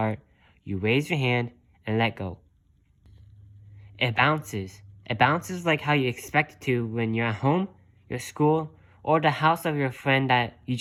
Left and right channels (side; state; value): both; identical; correlation 1.00